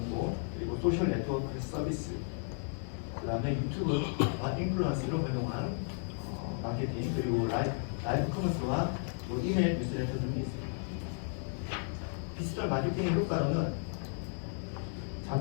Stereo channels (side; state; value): right; silent; 55 dB below the other